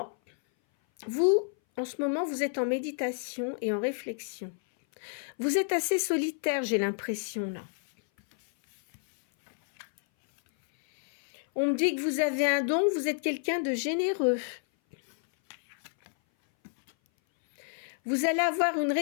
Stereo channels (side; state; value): right; silent; 57 dB below the other